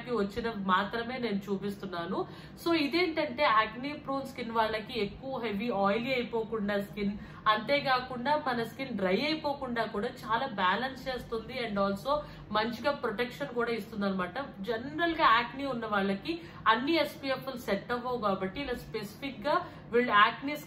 కి వచ్చిన మాత్రమే నేను చూపిస్తున్నాను. సో ఇదేంటంటే యాక్నీ ప్రోన్ స్కిన్ వాళ్ళకి ఎక్కువ హెవీ ఆయిలీ అయిపోకుండా స్కిన్, అంతేకాకుండా మన స్కిన్ డ్రై అయిపోకుండా కూడా చాలా బ్యాలెన్స్ చేస్తుంది. అండ్ ఆల్సో మంచిగా ప్రొటెక్షన్ కూడా ఇస్తుంది అనమాట. జనరల్ గా యాక్నీ ఉన్న వాళ్ళకి అన్ని SPF సెట్ అవ్వవు కాబట్టి ఇలా స్పెసిఫిక్ గా వీళ్ళు యాక్నీ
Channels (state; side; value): identical; both; correlation 1.00